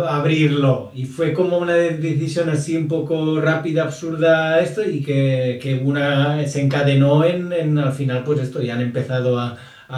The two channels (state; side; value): identical; both; correlation 1.00